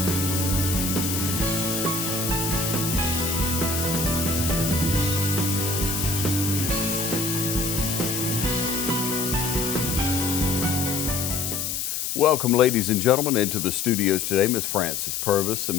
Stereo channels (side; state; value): left; noise; hiss, 2 dB below the sound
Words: Welcome, ladies and gentlemen, into the studios today. Miss Frances Purvis.